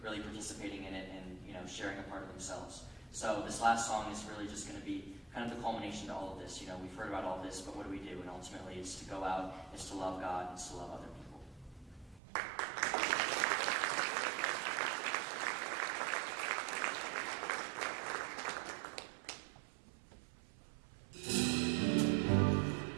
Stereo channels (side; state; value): left; drops out; at 12.2 s